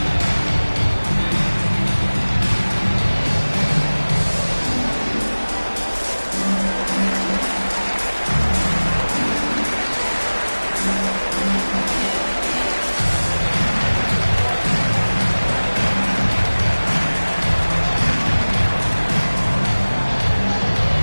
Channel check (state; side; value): inverted; both; correlation -1.00